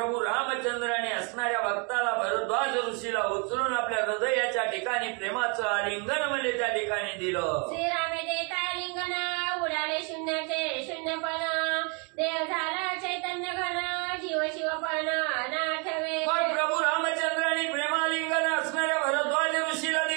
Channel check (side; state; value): left; quieter; 34.7 dB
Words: रामचंद्राने असणाऱ्या भक्ताला, भरद्वाज ऋषीला उचलून आपल्या हृदयाच्या ठिकाणी प्रेमाचं आलिंगन म्हणजे त्या ठिकाणी दिलं. श्रीरामे देता आलिंगन, उडाले शून्याचे शून्यपण, देव झाला चैतन्य घन, जीव शिवपण नाठवे. मग प्रभू रामचंद्राने प्रेमालिंगन असणाऱ्या भरद्वाज ऋषीला